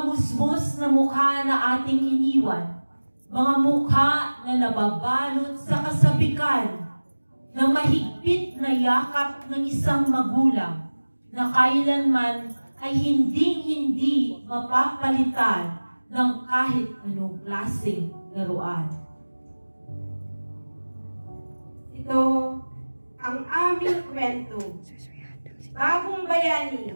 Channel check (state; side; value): inverted; both; correlation -1.00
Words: musmos na mukha na ating iniwan. Mga mukha na nababalot sa kasabikan ng mahigpit na yakap ng isang magulang na kailanman ay hinding-hindi mapapalitan ng kahit anong klaseng laruan. Ito ang aming kwento. Bagong bayani,